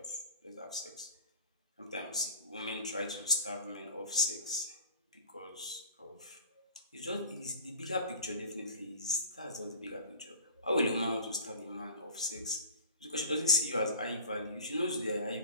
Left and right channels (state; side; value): inverted; both; correlation -0.40